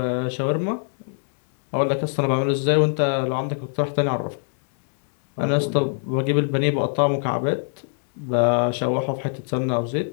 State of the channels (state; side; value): silent; right; 63 dB below the other